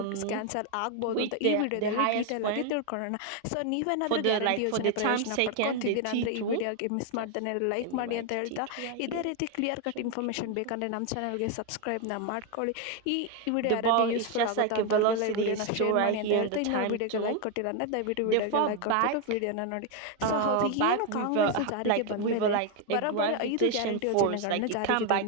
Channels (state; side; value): different; both; correlation 0.01